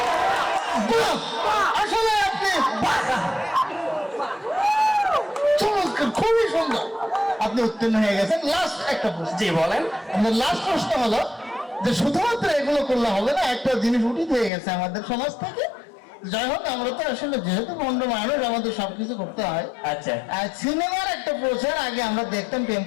উত্তীর্ণ হয়ে গেছেন। লাস্ট একটা প্রশ্ন, জি বলেন। আমাদের লাস্ট প্রশ্ন হলো যে শুধুমাত্র এগুলো করলে হবে না, একটা জিনিস উঠিত হয়ে গেছে আমাদের সমাজ থেকে। যাই হোক, আমরা তো আসলে যেহেতু বন্ধু মানুষ, আমাদের সবকিছু করতে হয়। আচ্ছা, আর সিনেমার একটা প্রচার আগে আমরা দেখতাম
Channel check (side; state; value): right; drops out; at 14.5 s